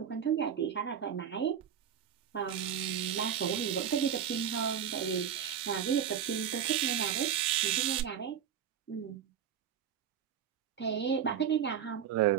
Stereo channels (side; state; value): left; quieter; 8.7 dB